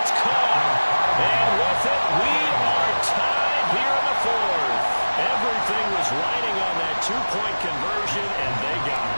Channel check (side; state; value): both; inverted; correlation -1.00